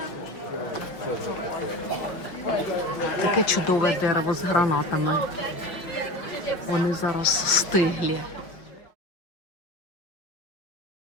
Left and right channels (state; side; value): late; right; 5.7 ms